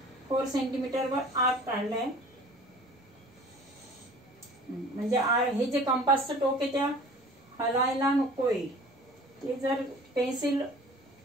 4 सेंटीमीटरवर आर्क काढलाय. म्हणजे हे जे कंपासचं टोक आहे त्या हलायला नकोय. ते जर पेन्सिल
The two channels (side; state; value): both; normal; correlation 0.46